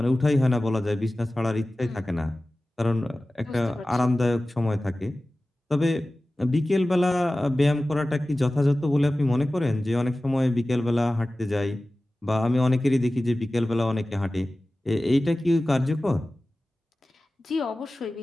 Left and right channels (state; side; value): normal; both; correlation 0.96